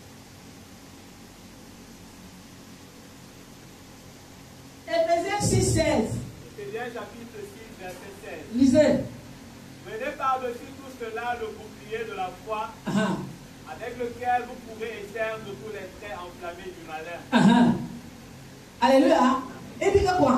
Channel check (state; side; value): identical; both; correlation 1.00